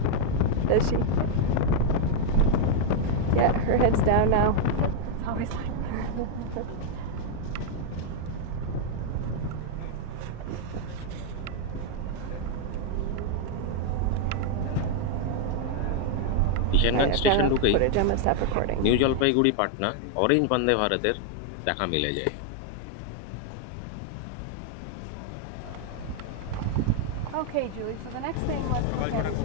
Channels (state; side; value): different; both; correlation 0.00